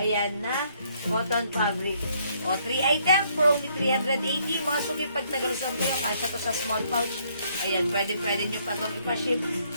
na, cotton fabric. O, 3 items for only 380. Mga suki, pag tagalusan kayo, kasya to sa small pouch. Ayan, pwede nyo pa itong ipaship.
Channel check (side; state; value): both; inverted; correlation -0.68